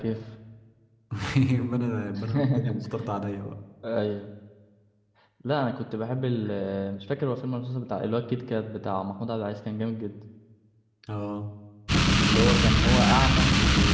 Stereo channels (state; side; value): identical; both; correlation 1.00